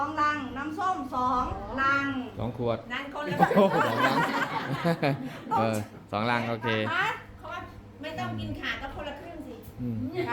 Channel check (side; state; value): both; identical; correlation 1.00